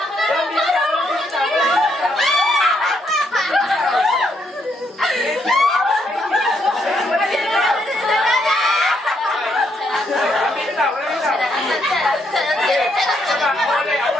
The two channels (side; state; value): both; normal; correlation 0.75